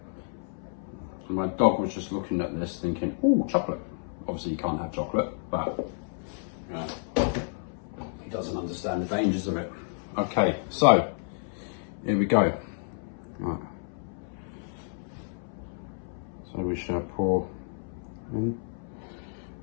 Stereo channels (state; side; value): silent; right; 58 dB below the other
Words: And my dog was just looking at this thinking, oh, chocolate. Obviously you can't have chocolate, but he doesn't understand the dangers of it. Okay, so here we go. Right. So we shall pour in.